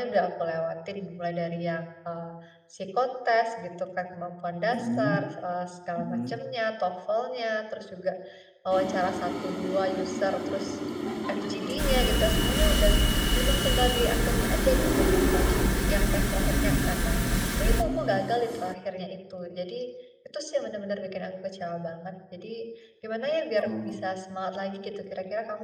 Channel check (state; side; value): identical; both; correlation 1.00